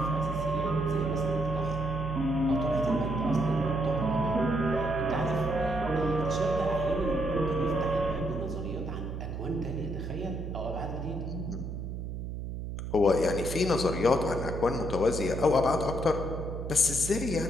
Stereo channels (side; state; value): right; noise; hum, 6 dB below the sound